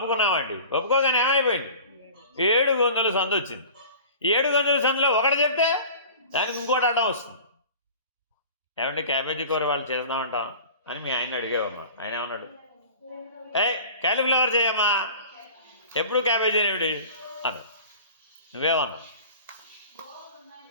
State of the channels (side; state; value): both; inverted; correlation -0.41